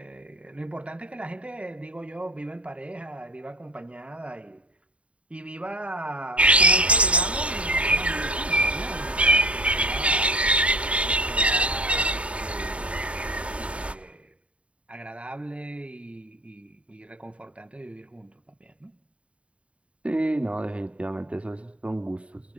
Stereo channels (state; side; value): late; left; 0.062 ms